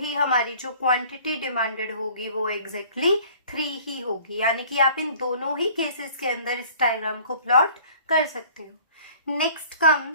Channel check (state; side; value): inverted; both; correlation -0.51